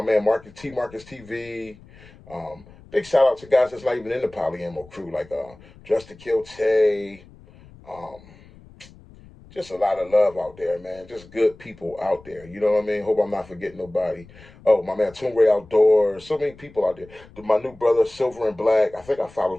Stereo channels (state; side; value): noise; left; rumble, 23 dB below the sound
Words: man Marcus TV, big shout out to guys that's not even in the poly ammo crew, like Just to Kill Tay, um, just a lot of love out there, man. Just good people out there. You know what I mean? Hope I'm not forgetting nobody. Oh, my man, Toon Ray Outdoors. So many people out there. My new brother, Silver and Black. I think I